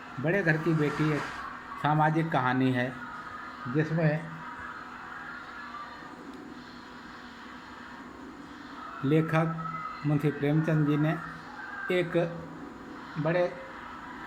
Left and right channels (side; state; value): both; identical; correlation 1.00